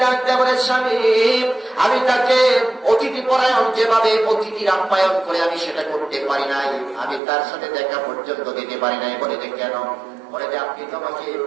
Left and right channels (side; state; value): left; drops out; at 7.2 s